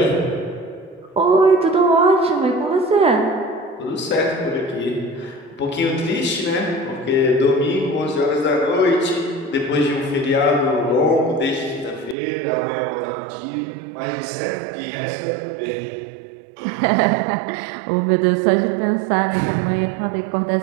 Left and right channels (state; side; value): drops out; left; at 12.2 s